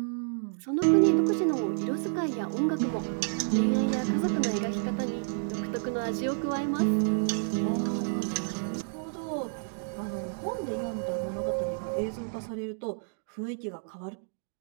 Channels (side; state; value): left; silent; digital silence